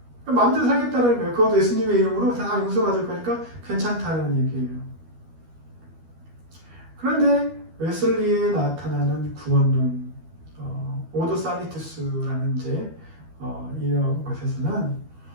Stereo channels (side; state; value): left; late; 12 ms